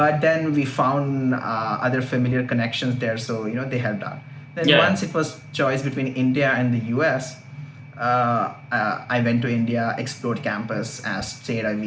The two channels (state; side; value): identical; both; correlation 1.00